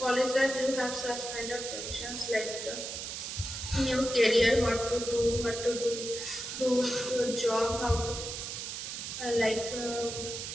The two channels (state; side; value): noise; right; hiss, 6 dB below the sound